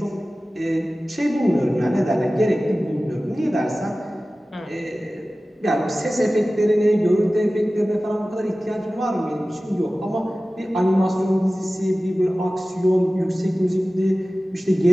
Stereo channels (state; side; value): normal; both; correlation 0.96